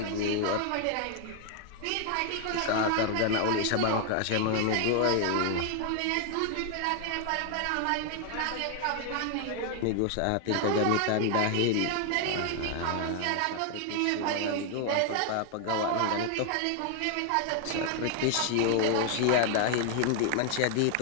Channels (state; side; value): different; both; correlation 0.00